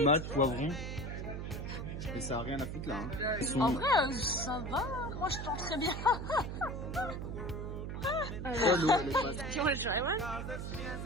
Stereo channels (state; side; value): noise; right; hum, 5 dB below the sound